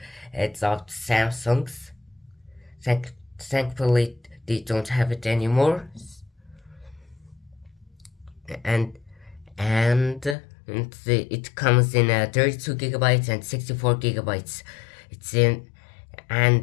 It's of Samsung's. Thankfully, they don't have it anymore. and it comes in 32 gigabytes and 64 gigabytes. It's in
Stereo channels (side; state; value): right; drops out; at 10.4 s